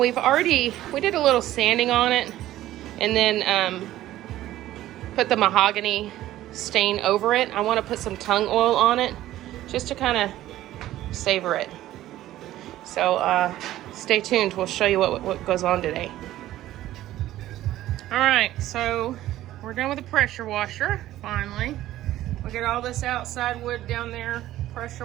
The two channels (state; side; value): quieter; left; 14.3 dB